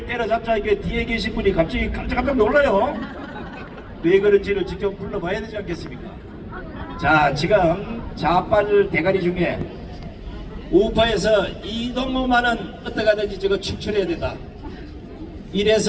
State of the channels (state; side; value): identical; both; correlation 1.00